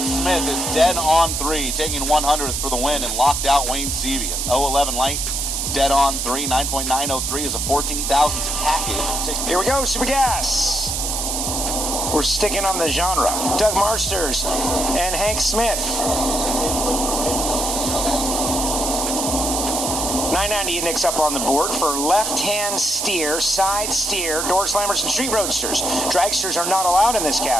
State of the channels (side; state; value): right; noise; hiss, 1 dB below the sound